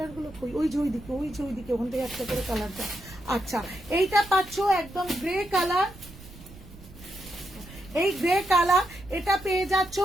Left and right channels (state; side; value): noise; right; rumble, 19 dB below the sound